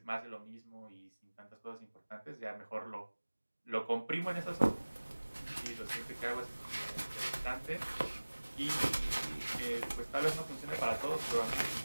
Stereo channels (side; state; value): both; inverted; correlation -1.00